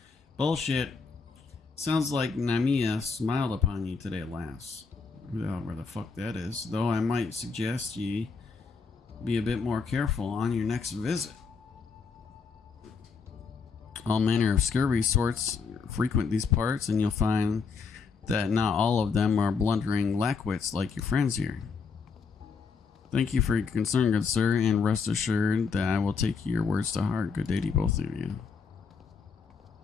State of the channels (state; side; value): quieter; right; 5.2 dB